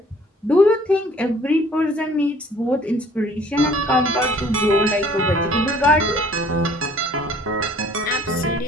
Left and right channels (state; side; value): normal; both; correlation 0.55